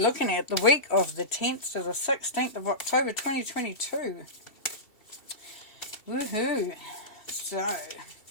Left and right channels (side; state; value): right; late; 2.7 ms